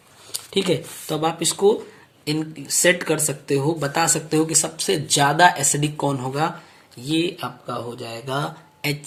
ठीक है, तो अब आप इसको इन सेट कर सकते हो, बता सकते हो कि सबसे ज्यादा एसिडिक कौन होगा। ये आपका हो जाएगा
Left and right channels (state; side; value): identical; both; correlation 1.00